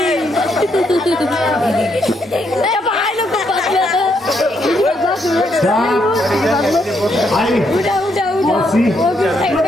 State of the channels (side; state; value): both; normal; correlation 0.76